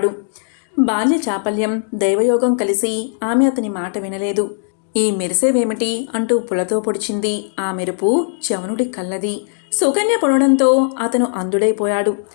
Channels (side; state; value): right; silent; digital silence